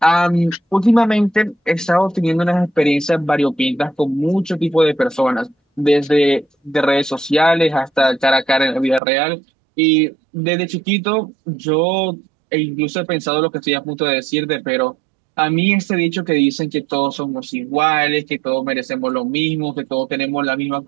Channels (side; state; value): left; drops out; at 9.0 s